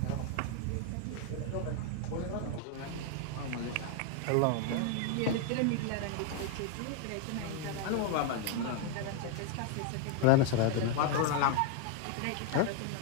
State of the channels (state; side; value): different; both; correlation 0.00